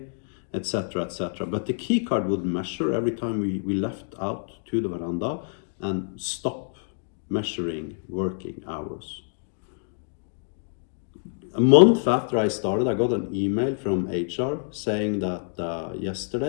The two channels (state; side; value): silent; right; digital silence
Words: etc., etc. But the key card would measure every time we left out to the veranda and stop measuring working hours. A month after I started, I got an email from HR saying that